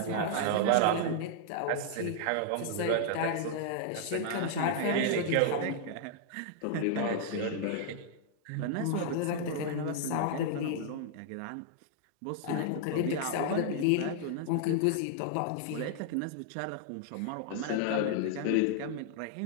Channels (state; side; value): different; both; correlation -0.01